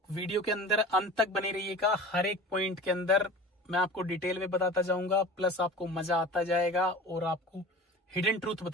वीडियो के अंदर अंत तक बने रहिएगा, हर एक पॉइंट के अंदर मैं आपको डिटेल में बताता जाऊंगा, प्लस आपको मजा आता जाएगा और आपको हिडन ट्रूथ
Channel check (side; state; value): both; normal; correlation 0.38